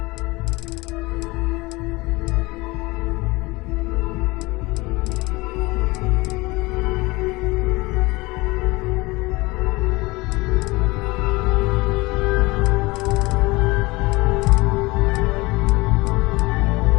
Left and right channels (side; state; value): right; quieter; 22.7 dB